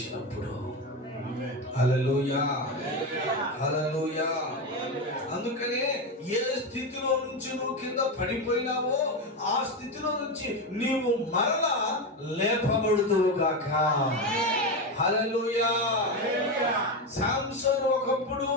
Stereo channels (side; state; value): both; normal; correlation 0.15